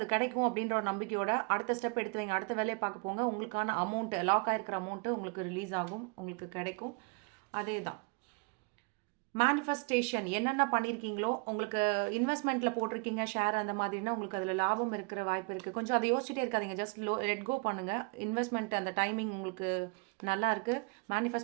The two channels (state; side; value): quieter; left; 31.8 dB